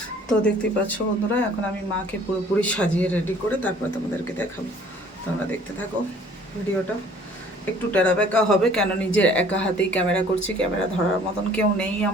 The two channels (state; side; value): normal; both; correlation 0.54